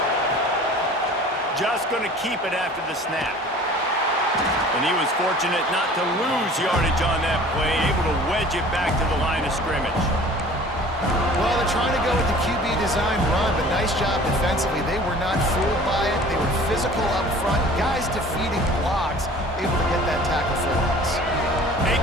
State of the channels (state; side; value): normal; both; correlation 0.46